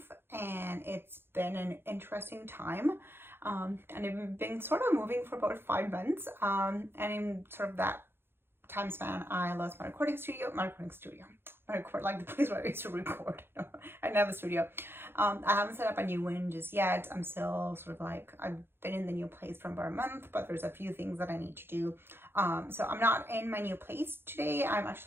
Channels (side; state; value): left; late; 0.11 ms